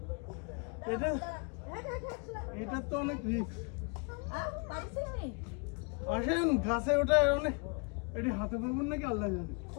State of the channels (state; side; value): quieter; right; 34.5 dB